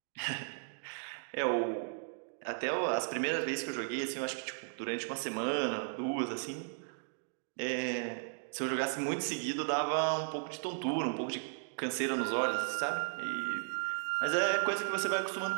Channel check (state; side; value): silent; left; digital silence